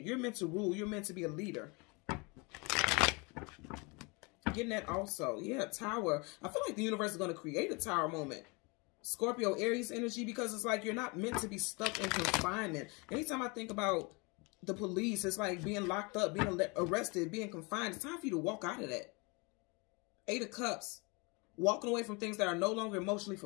You're meant to rule. You're meant to be a leader. Getting that also. Yeah, Tower. I feel like the universe is going to create a Tower moment. Scorpio, Aries energy, because it's like you're not meant to be stuck in confinement. Anytime I think about the police, it's like being locked up, being arrested, being confined. It's time for you to walk out of that. 8 of Cups. Walking away from things that are no longer emotionally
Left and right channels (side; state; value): right; quieter; 28.9 dB